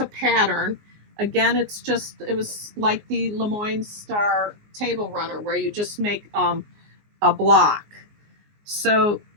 pattern. Again, it was like the Lemoyne Star table runner where you just make a block. So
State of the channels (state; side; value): late; left; 19 ms